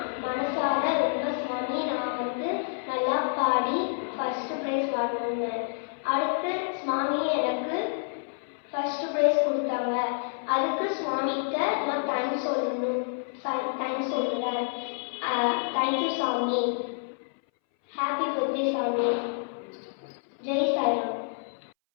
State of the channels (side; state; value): right; silent; 59 dB below the other